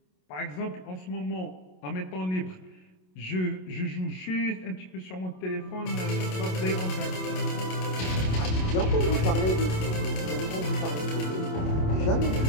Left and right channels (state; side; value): late; right; 27 ms